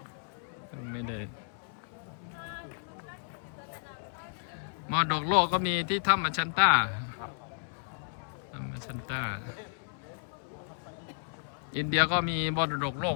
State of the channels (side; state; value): right; silent; 56 dB below the other